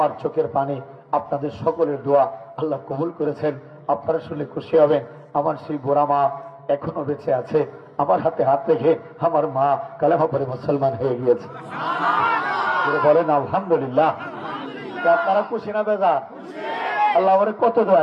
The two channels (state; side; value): identical; both; correlation 1.00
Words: চোখের পানি আপনাদের সকলের দোয়া আল্লাহ কবুল করেছেন। আপনারা শুনলে খুশি হবেন, আমার সেই বোরা মা এখনো বেঁচে আছে। আমার হাতে হাত রেখে আমার মা কালেমা পড়ে মুসলমান হয়ে গিয়েছে। বলেন আলহামদুলিল্লাহ। আপনারা খুশি না বেজা? আল্লাহ আমার কত